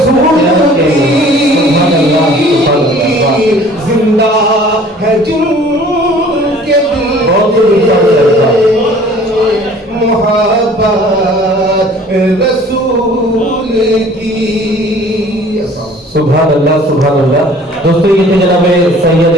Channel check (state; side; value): normal; both; correlation 0.51